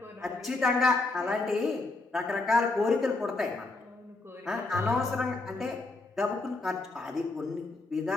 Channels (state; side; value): quieter; right; 3.3 dB